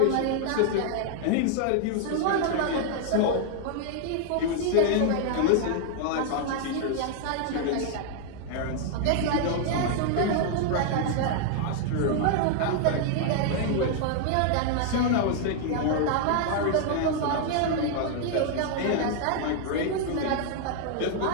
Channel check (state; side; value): different; both; correlation 0.00